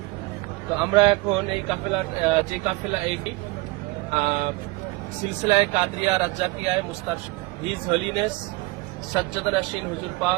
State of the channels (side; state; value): left; quieter; 22.8 dB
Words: তো আমরা এখন এই কাফেলা এই সিলসিলায় কাদরিয়া রাজ্জাকিয়ায় মুস্তারশিদ হিজ হলিনেস সাজ্জাদ নাশিন হুজুর